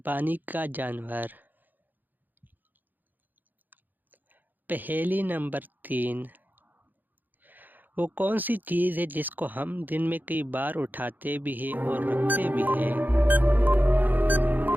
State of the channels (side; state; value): left; late; 0.087 ms